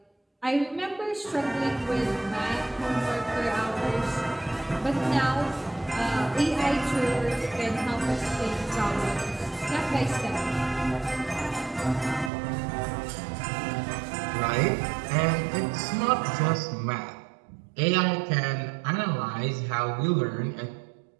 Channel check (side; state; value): left; drops out; at 12.3 s